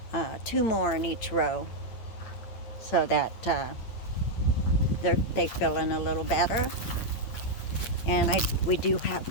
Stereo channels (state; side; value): late; right; 8.8 ms